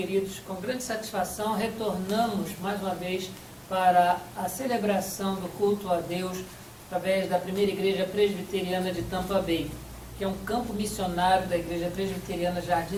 Com grande satisfação, retornamos mais uma vez para a celebração do culto a Deus através da primeira igreja presbiteriana de Tampa Bay, que é um campo missionário da igreja presbiteriana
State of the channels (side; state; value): both; identical; correlation 1.00